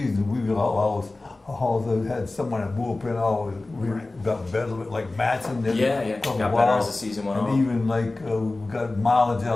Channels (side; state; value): right; quieter; 3.1 dB